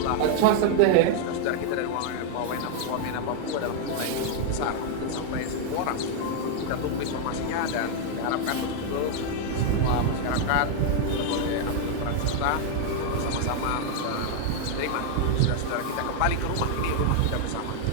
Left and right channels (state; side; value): different; both; correlation 0.00